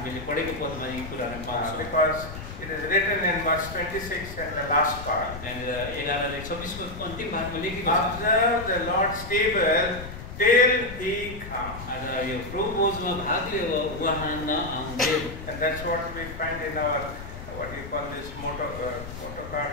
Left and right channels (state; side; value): noise; left; rumble, 11 dB below the sound